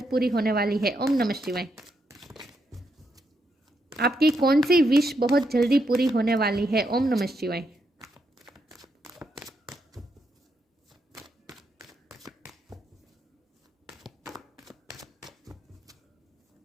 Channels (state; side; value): normal; both; correlation 0.80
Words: पूरी होने वाली है। ओम नमः शिवाय। आपकी कौन सी विश बहुत जल्दी पूरी होने वाली है। ओम नमः शिवाय।